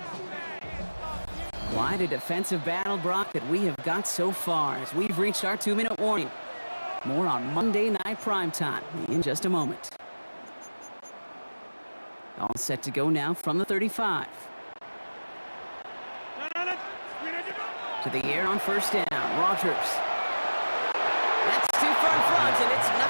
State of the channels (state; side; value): inverted; both; correlation -1.00